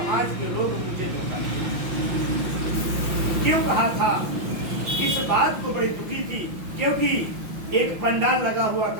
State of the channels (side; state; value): left; late; 5.8 ms